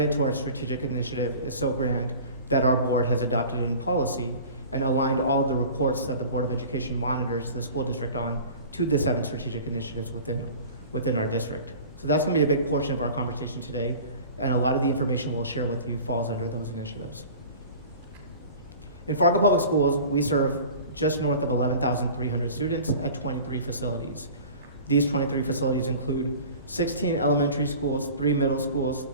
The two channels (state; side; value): inverted; both; correlation -0.40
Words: to our strategic initiative is so grand that our board has adopted in policy and aligned all of the reports that the Board of Education monitors the school district on to the 7 strategic initiatives within our district. So that's going to be a big portion of our conversation today, and a lot of the information we'll share with you falls under those initiatives. In Fargo Public Schools, we serve just north of 11,300 students at 23 facilities. These 23 facilities include 16 elementary schools, 3 middle schools,